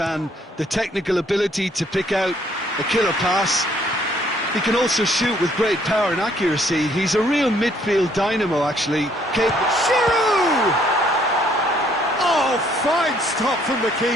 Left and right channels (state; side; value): normal; both; correlation 0.65